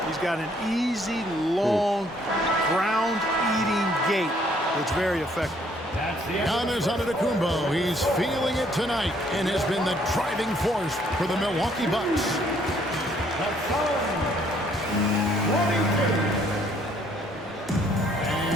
He's got an easy, long, ground-eating gait that's very effective. Giannis Antetokounmpo, he's feeling it tonight and has been the driving force for the Milwaukee Bucks.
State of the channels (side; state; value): both; normal; correlation 0.64